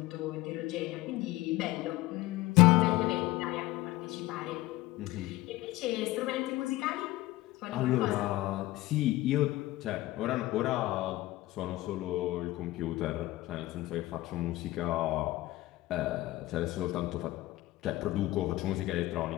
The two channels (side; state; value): right; quieter; 18.0 dB